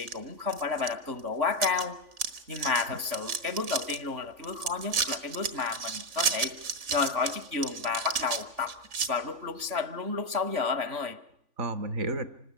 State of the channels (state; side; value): late; left; 3.5 ms